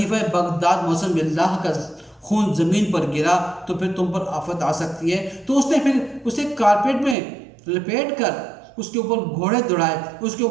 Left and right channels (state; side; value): drops out; left; at 7.2 s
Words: बगदाद मौसम बिल्लाह का खून ज़मीन पर गिरा तो फिर तुम पर आफत आ सकती है। तो उसने फिर उसे कारपेट में लपेट कर उसके ऊपर घोड़े दौड़ाए, उसके